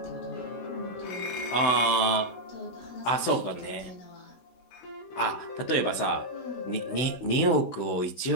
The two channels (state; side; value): late; right; 16 ms